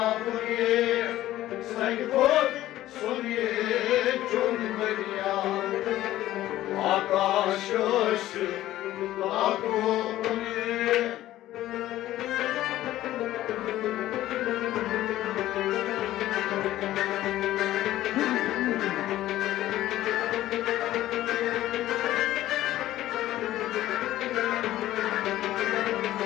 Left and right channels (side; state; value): right; quieter; 14.5 dB